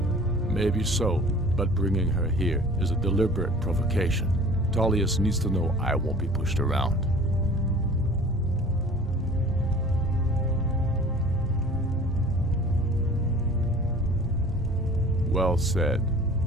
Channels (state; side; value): normal; both; correlation 0.46